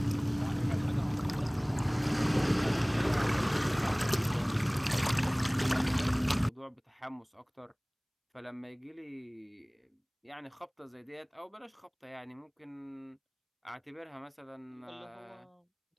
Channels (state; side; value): identical; both; correlation 1.00